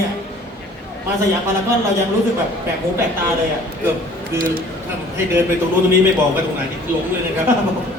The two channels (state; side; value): normal; both; correlation 0.52